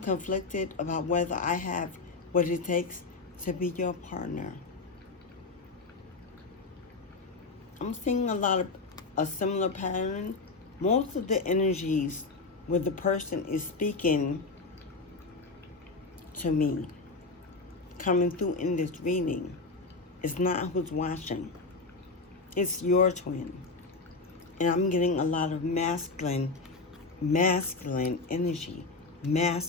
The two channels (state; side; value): quieter; right; 3.8 dB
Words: about whether I have what it takes to be your partner. I'm seeing a similar pattern. Most of the energies where the person is speaking to me, coming through in this reading, it's not who's watching. It's your twin. And I'm getting a lot of masculine energy.